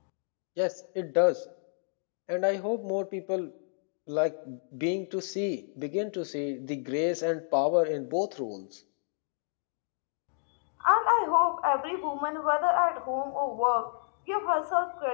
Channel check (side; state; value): right; silent; digital silence